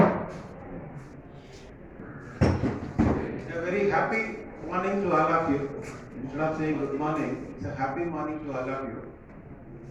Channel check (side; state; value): both; identical; correlation 1.00